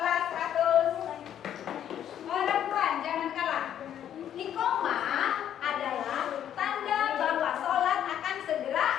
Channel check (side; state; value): right; quieter; 10.2 dB